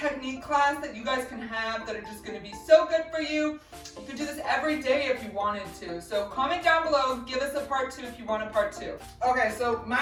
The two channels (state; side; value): identical; both; correlation 1.00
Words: class that you guys can have that are just going to be so good for you. You can do this every day if you wanted to. So comment down below, give us a part 2 if you want a part 2. Okay, so